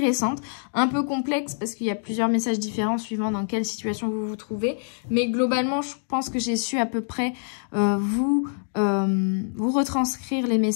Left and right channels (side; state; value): right; silent; digital silence